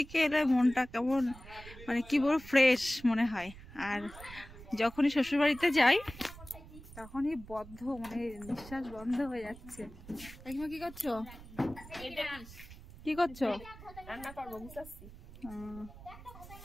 এলে মনটা কেমন মানে কি বলবো ফ্রেশ মনে হয়, আর যখনই শ্বশুর বাড়িতে যাই তখনই বদ্ধ মানে নিঃশ্বাস বন্ধ হয়ে যাচ্ছে। কাকিমা কি করছো? কি করছো? রান্না করবো বুঝাচ্ছি।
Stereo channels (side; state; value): right; noise; rumble, 17 dB below the sound